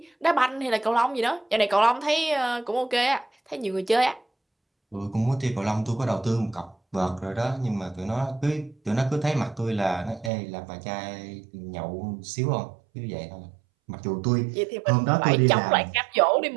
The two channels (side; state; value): left; drops out; at 10.3 s